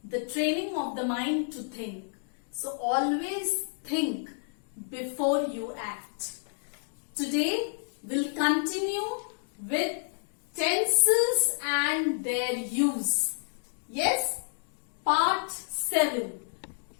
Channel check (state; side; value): silent; right; digital silence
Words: the training of the mind to think. So always think before you act. Today we'll continue with tenses and their use. Yes, part 7.